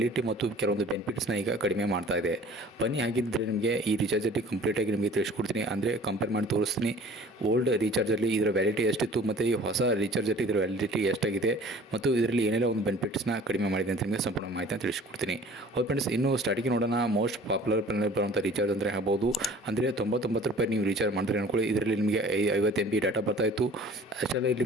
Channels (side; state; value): both; normal; correlation 0.48